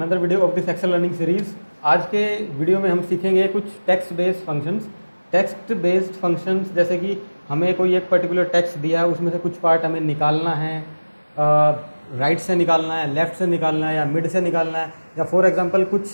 video of this Excel learning series. आज के video में हम सीखेंगे कुछ text based functions. Text based functions जैसे कि हमें कोई एक पर्टिकुलर टेक्स्ट दिया है, उसमें से कुछ पार्ट हमें निकालना है, राइट से निकालना है, लेफ़्ट से निकालना है या मिड से निकालना है, या फॉर एग्जांपल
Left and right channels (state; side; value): inverted; both; correlation -1.00